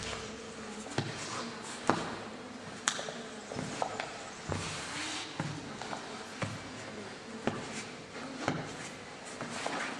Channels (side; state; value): both; identical; correlation 1.00